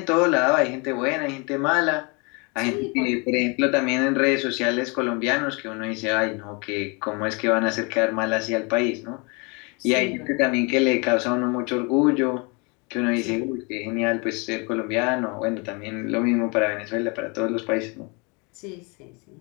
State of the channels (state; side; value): quieter; right; 30.6 dB